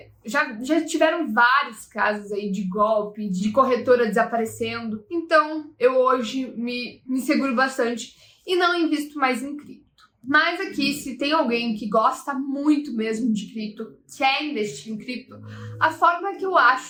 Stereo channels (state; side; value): identical; both; correlation 1.00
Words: Já tiveram vários casos aí de golpe, de corretora desaparecendo. Então, eu hoje me seguro bastante e não invisto mais em cripto. Mas aqui, se tem alguém que gosta muito mesmo de cripto, quer investir em cripto, a forma que eu